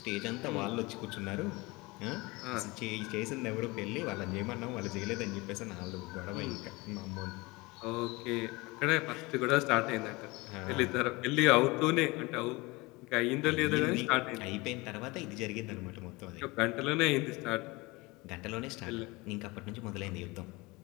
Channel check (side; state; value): right; quieter; 23.7 dB